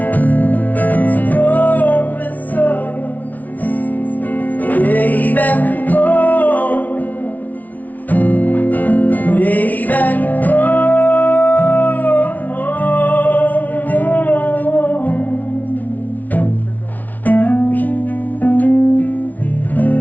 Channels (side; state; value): right; late; 0.076 ms